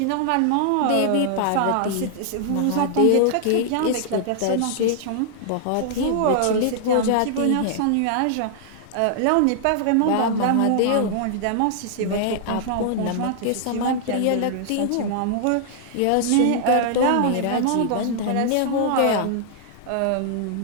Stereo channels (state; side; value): different; both; correlation -0.01